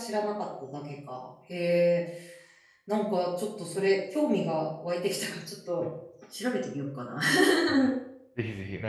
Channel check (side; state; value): both; identical; correlation 1.00